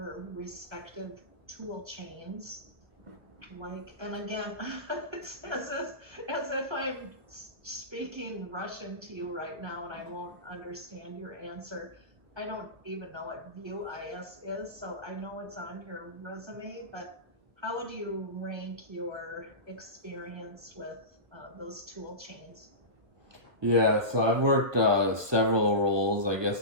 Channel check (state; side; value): late; left; 1.5 ms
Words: respective tool chains, and again, it's as if I'm speaking Russian to you right now and I won't understand your answer. I don't even know what Vue JS is, so I know it's on your resume, but how would you rank your experience with those tool chains? Yeah, so I've worked several roles. I